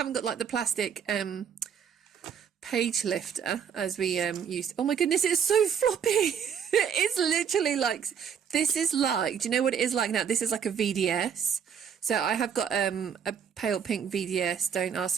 got like the plastic page lifter as we used. Oh my goodness, it's so floppy. It's literally like, this is like, do you know what it is like now? This is like a VDS. So I have got a pale pink VDS. Don't ask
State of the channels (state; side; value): quieter; left; 7.6 dB